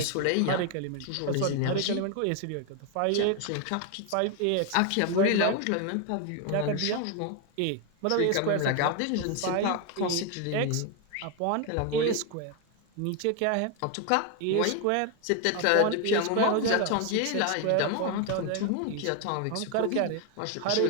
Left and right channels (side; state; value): both; different; correlation 0.01